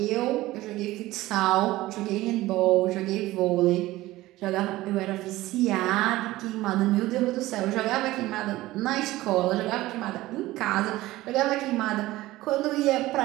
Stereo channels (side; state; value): left; quieter; 17.5 dB